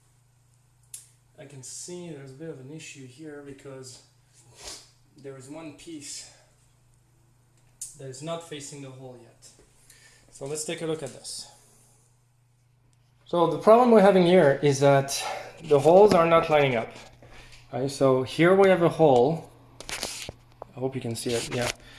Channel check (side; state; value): both; identical; correlation 1.00